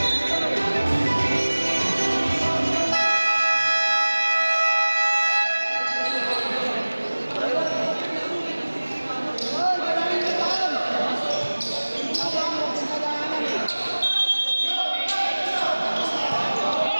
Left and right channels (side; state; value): both; inverted; correlation -1.00